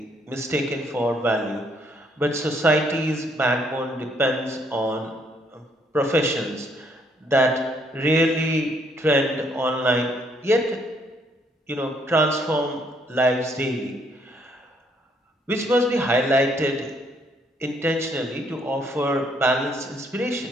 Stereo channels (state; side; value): normal; both; correlation 0.69